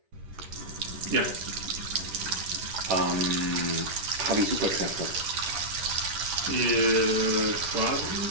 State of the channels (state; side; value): late; left; 10 ms